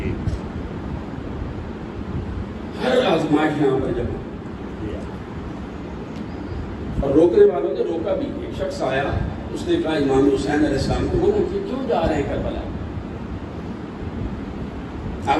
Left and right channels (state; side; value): identical; both; correlation 1.00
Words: ہر آزمائش یہاں پر جمع. اور روکنے والوں نے روکا بھی. ایک شخص آیا, اس نے کہا امام حسین علیہ السلام کو منع کیا, کیوں جا رہے ہیں کربلا, آپ